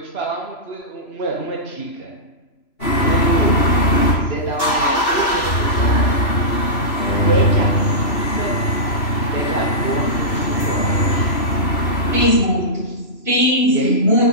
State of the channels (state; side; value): late; right; 3.0 ms